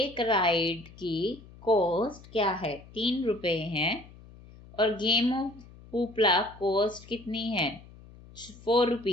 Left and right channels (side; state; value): left; noise; hum, 21 dB below the sound